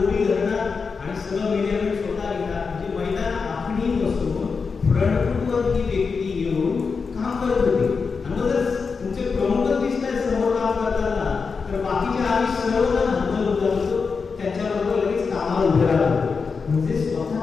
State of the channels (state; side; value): quieter; right; 5.1 dB